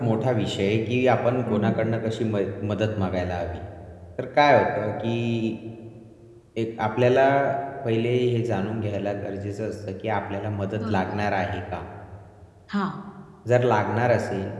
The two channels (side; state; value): both; identical; correlation 1.00